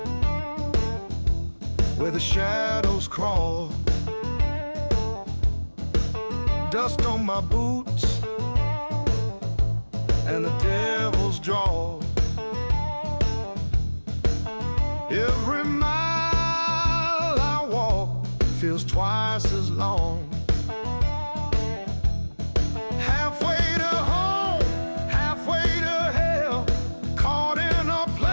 where the shadows crawl. Dust on my boots and the devil's draw. Every mile I walk feels twice as long. Halfway to home, halfway to hell, caught in a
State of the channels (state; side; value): inverted; both; correlation -1.00